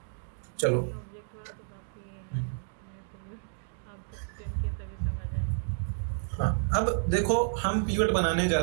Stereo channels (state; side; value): silent; left; digital silence